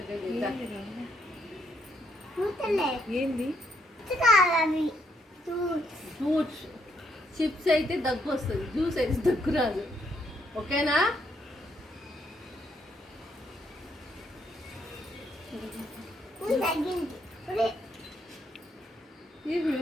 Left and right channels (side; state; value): both; normal; correlation 0.74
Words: ఏంది ఫ్రూట్స్ చిప్స్ అయితే దగ్గు వస్తుంది, జ్యూస్ అయితే దగ్గు రాదు. ఓకేనా?